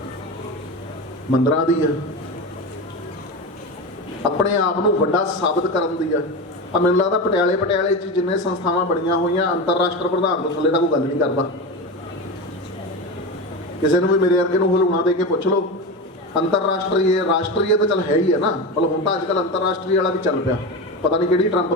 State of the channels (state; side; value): normal; both; correlation 0.22